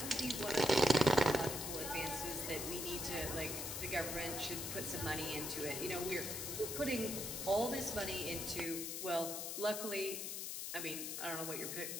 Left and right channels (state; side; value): noise; left; hiss, 4 dB below the sound